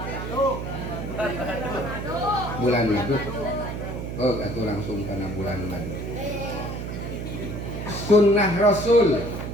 Bulan madu. Oh, atuh langsung karena bulan madu. Sunnah Rasul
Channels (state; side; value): noise; right; hum, 6 dB below the sound